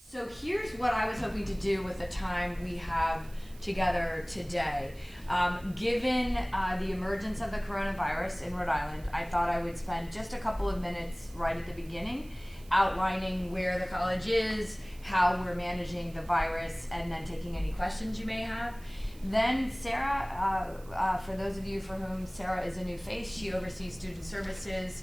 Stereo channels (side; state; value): right; noise; hiss, 24 dB below the sound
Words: So here's what I was hoping to do with the time we have together today. Given the emergence of the coronavirus in Rhode Island, I thought I would spend just a couple of minutes right at the beginning outlining where the college is, how we're managing the virus, and then taking any questions you may have. Then Sarah, for those of you for whom Sarah is a new face, she oversees student